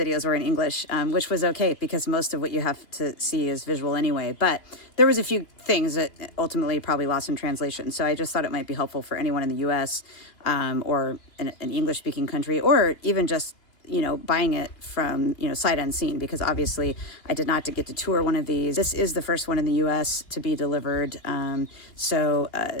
were in English, which was okay because most of what you have to see is visual anyway. But there was a few things that ultimately probably lost in translation. So I just thought it might be helpful for anyone in the US or an English-speaking country, or even just, you know, buying it from, you know, sight unseen, because obviously I did not get to tour one of these. This is the first one in the US to be delivered. So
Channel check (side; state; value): right; late; 2.8 ms